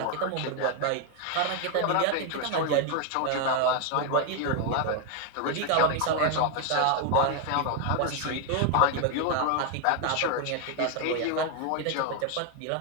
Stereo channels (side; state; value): both; different; correlation 0.01